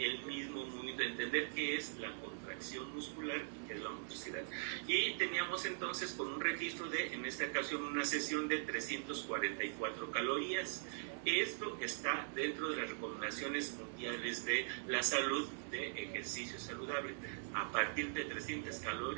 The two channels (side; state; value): left; silent; digital silence